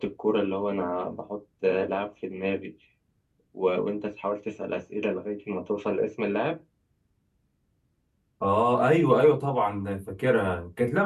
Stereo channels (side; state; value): both; identical; correlation 1.00